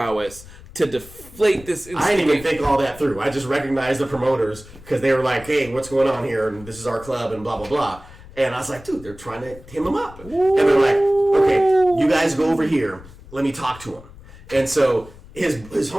to deflate this." I didn't even think all that through. I just recognized the promoters because they were like, "Hey, what's going on here? And this is our club and blah, blah, blah." And I was like, "Dude, they're trying to hem him up." Ooh. And they're like, "Okay, you guys go over here. Let me talk to him." And so his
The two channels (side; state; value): left; noise; rumble, 20 dB below the sound